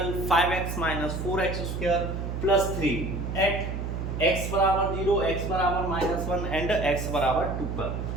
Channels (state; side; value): noise; right; hum, 4 dB below the sound